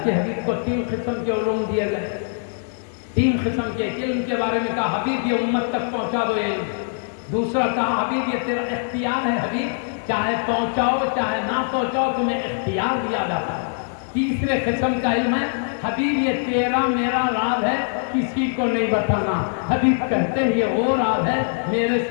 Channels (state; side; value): silent; right; digital silence